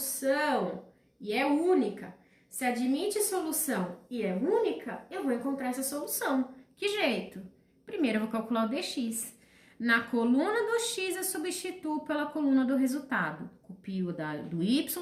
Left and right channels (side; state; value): both; identical; correlation 1.00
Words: e é única. Se admite solução e é única, eu vou encontrar essa solução. Que jeito? Primeiro eu vou calcular o dx. Na coluna do x eu substituo pela coluna do resultado. Copio do